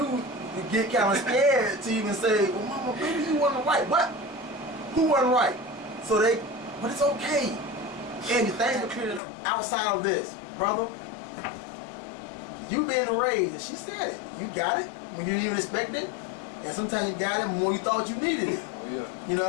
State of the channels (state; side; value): drops out; right; at 9.2 s